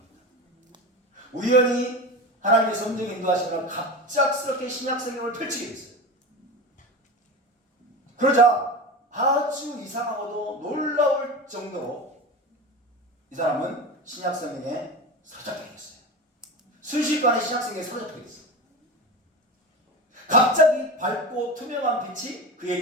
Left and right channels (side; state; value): both; normal; correlation 0.27